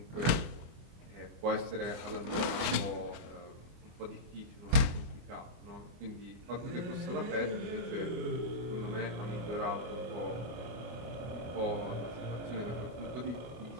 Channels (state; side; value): late; left; 24 ms